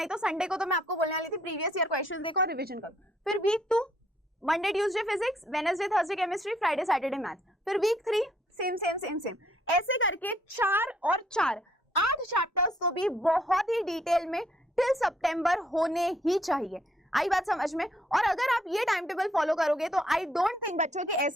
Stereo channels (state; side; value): normal; both; correlation 0.67